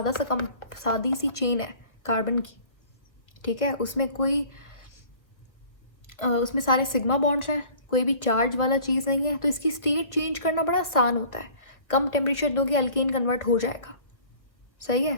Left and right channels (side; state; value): right; late; 1.2 ms